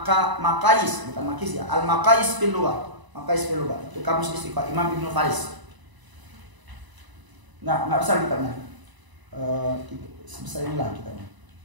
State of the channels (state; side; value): late; left; 1.0 ms